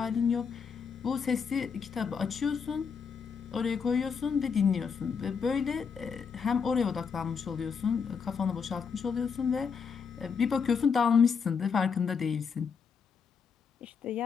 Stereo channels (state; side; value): quieter; right; 6.1 dB